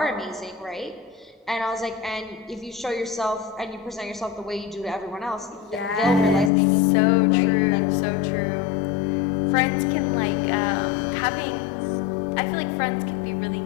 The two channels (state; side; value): drops out; right; at 6.5 s